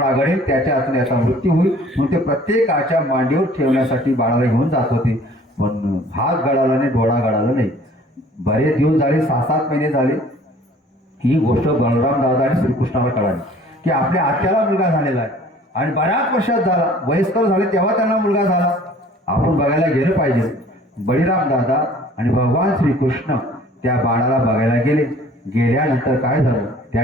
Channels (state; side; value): normal; both; correlation 0.52